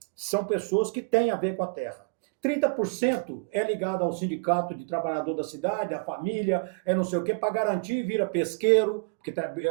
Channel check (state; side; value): quieter; left; 32.7 dB